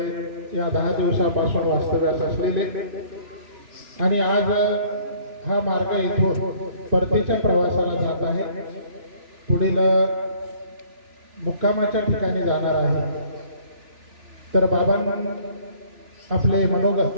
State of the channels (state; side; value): late; left; 3.0 ms